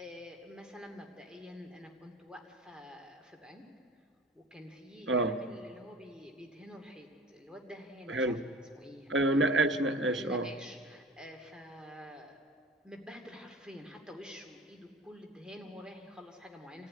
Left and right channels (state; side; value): normal; both; correlation 0.41